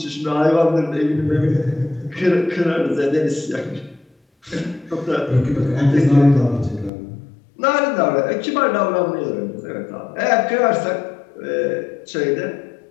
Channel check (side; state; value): right; drops out; at 6.9 s